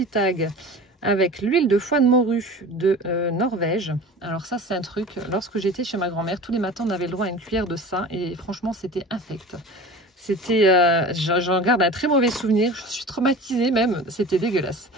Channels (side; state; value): both; normal; correlation 0.37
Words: tag avec l'huile de foie de morue de Norvège. Alors ça, c'est un truc, lorsque j'étais chez ma grand-mère, tous les matins, on avait le droit à une cuillère de ça. Et franchement, c'était infect. C'était, j'en garde un très mauvais souvenir, je suis traumatisée même, c'était dégueulasse.